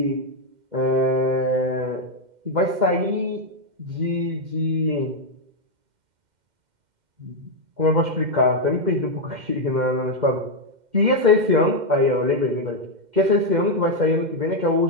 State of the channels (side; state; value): left; late; 2.1 ms